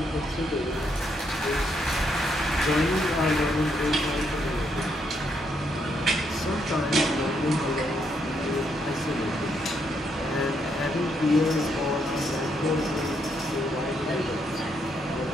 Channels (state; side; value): normal; both; correlation 0.76